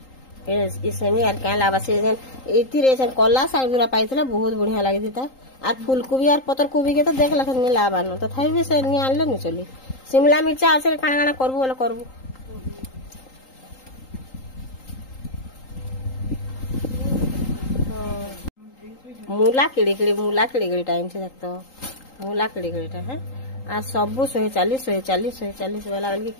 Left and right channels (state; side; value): late; right; 3.8 ms